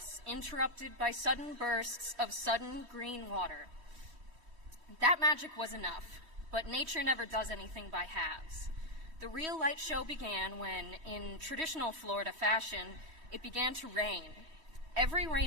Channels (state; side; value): late; left; 3.1 ms